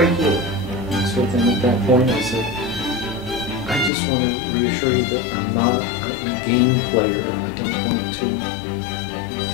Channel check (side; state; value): right; drops out; at 3.9 s